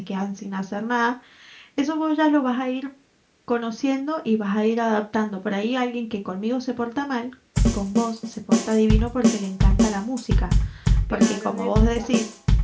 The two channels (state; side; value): identical; both; correlation 1.00